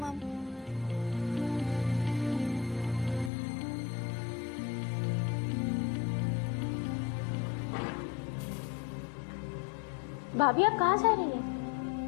भाभी आप कहाँ जा रही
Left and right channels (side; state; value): right; drops out; at 3.3 s